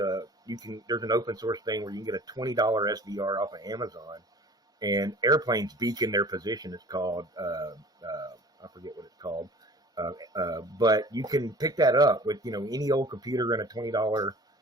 there's an open source thing where you can get a $20 SDR off of Amazon, and airplanes beacon their position. It's called, I forget what it's called. But you can pick that up with, any old computer and a $20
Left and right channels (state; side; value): normal; both; correlation 0.45